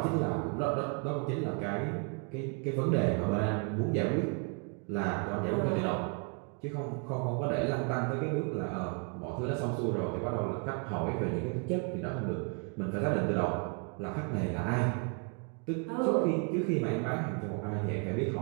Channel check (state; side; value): quieter; left; 36.5 dB